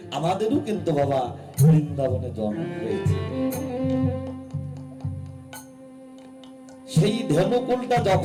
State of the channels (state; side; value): identical; both; correlation 1.00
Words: আমাদেরও কিন্তু বাবা বৃন্দাবনে জন্ম হয়েছে। সেই ধেনুকুলটা